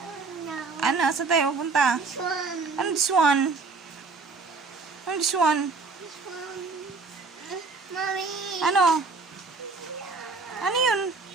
Ano? Saan tayo pupunta? This one. Ano this one? Ano this one? This one. Mami. Ano? Ano yun?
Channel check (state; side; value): quieter; left; 4.3 dB